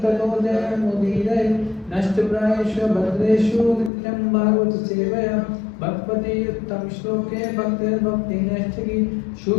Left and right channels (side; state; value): right; drops out; at 3.9 s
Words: ततो जयमुदीरये नष्टप्रायेषु भद्रेषु नित्यं भागवत सेवया भगवती उत्तम श्लोके भक्तिर्भक्तिनैष्ठिकी